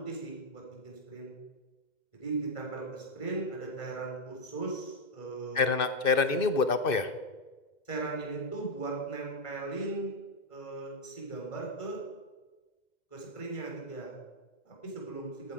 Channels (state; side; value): late; right; 2.6 ms